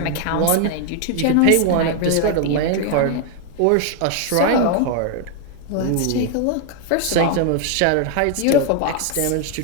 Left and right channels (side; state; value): both; different; correlation 0.00